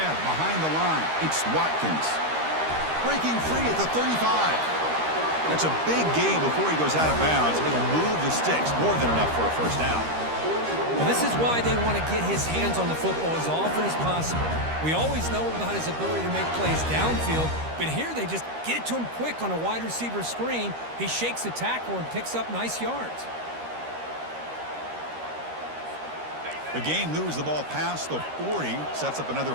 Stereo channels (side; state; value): left; late; 13 ms